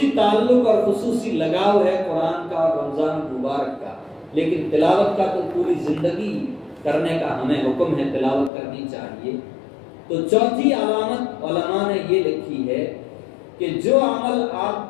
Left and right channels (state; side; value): drops out; right; at 8.5 s